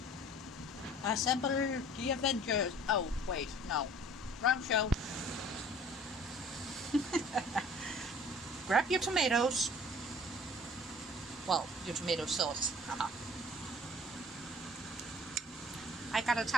Assemble the Avengers. Oh, wait, no. Wrong show. Grab your tomatoes. Well, your tomato sauce. I got a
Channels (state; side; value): normal; both; correlation 0.50